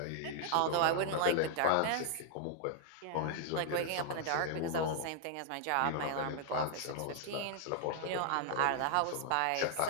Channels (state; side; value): different; both; correlation 0.00